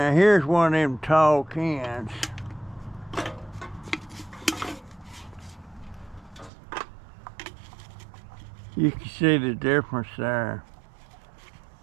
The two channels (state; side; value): drops out; left; at 6.5 s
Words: here's one of them tall cans. You can see the difference there.